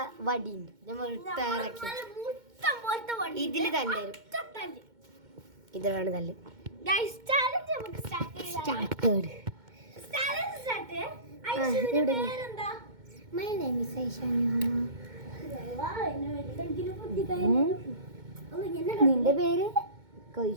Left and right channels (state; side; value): late; left; 2.2 ms